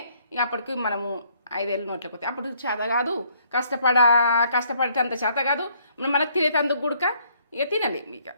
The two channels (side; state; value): both; inverted; correlation -0.66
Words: ఇక అప్పటికి మనము 5 ఏళ్ళు నోట్లోకి వస్తాయి. అప్పుడు చేత కాదు, కష్టపడేటంత చేత కాదు, మనకు తినేటందుకు గుడక ఇక తినలేము. ఇక